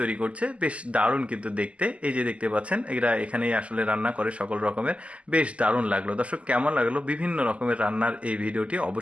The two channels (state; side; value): late; left; 0.061 ms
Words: তৈরি করছে। বেশ দারুণ কিন্তু দেখতে, এই যে দেখতে পাচ্ছেন এরা এখানেই আসলে রান্না করে সকল রকমের। বেশ দারুণ লাগলো। দর্শক কেমন লাগলো বিভিন্ন রকমের রান্নার এই ভিডিওটি